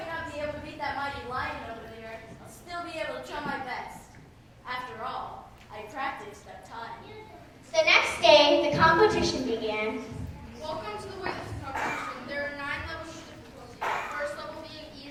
not be able to beat that mighty lion over there, I'll still be able to try my best. After all, I practiced that time. The next day, the competition began. Welcome to the weightlifting competition. There are 9 levels of difficulty. The first level being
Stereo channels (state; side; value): identical; both; correlation 1.00